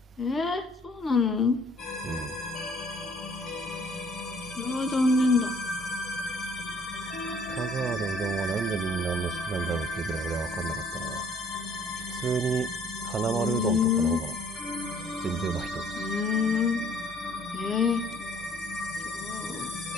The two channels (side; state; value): both; normal; correlation 0.59